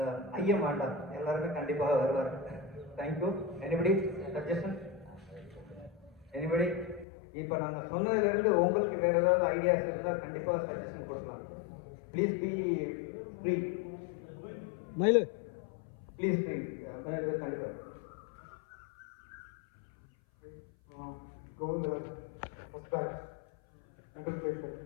ஐயம் வேண்டாம், எல்லாருமே கண்டிப்பாக வருவார். தேங்க்யூ. Anybody suggestion? எனிபடி? இப்போ நாங்கள் சொன்னதுலேருந்து உங்களுக்கு வேறு ஏதாவது ஐடியாஸ் இருந்தால் கண்டிப்பாக சஜஷன் கொடுக்கலாம். Please be free. மயிலு ப்ளீஸ் ஃப்ரீ. கண்டிப்பாக Govind, first batch, middle place.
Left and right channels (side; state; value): right; drops out; at 7.1 s